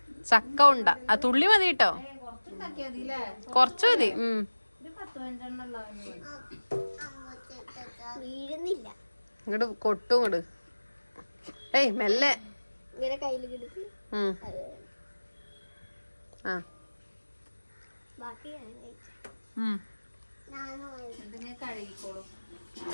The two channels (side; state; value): both; inverted; correlation -1.00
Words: ചക്ക ഉണ്ട ആ തുള്ളി മതി കേട്ടോ, കൊറച്ചു മതി. ഇങ്ങോട്ട് കൊട്ടും ഇങ്ങോട്ട്. ഏയ് മെല്ലെ. ആ കഴുകിക്കോളും.